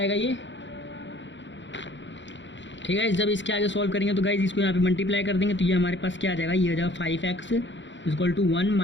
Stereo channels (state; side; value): late; right; 0.54 ms